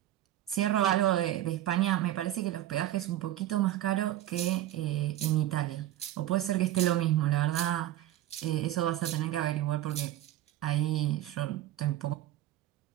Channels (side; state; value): left; quieter; 13.5 dB